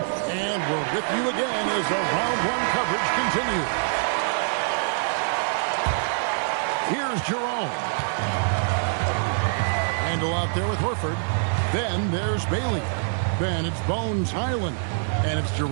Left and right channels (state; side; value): silent; left; digital silence